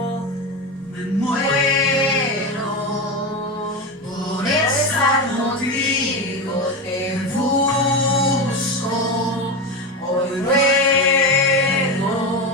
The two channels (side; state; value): both; normal; correlation 0.17